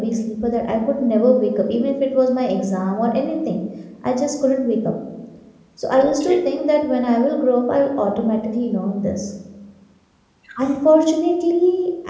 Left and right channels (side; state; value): both; identical; correlation 1.00